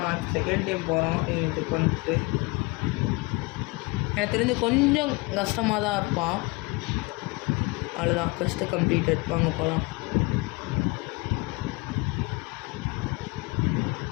செகண்ட் டைம் போகிறோம் இது கொண்டுட்டு. எனக்கு தெரிஞ்சு கொஞ்சம் கஷ்டமாக தான் இருப்பான். அவ்வளோதான், ஃபஸ்ட்டு கம்ப்ளீட்டட். வாங்க போகலாம்.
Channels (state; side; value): quieter; right; 25.8 dB